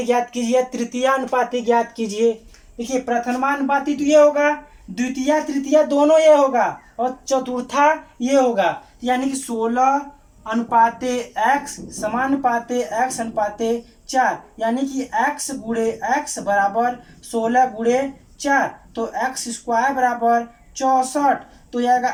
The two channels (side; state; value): both; identical; correlation 1.00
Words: ज्ञात कीजिए, तृतीयानुपाती ज्ञात कीजिए। देखिए प्रथमानुपाती तो ये होगा, द्वितीय तृतीय दोनों ये होगा और चतुर्था ये होगा, यानी कि 16:x समानुपाते x अनुपाते 4, यानी कि x गुणे x बराबर 16 गुणे 4, तो x स्क्वायर बराबर 64। तो यह आएगा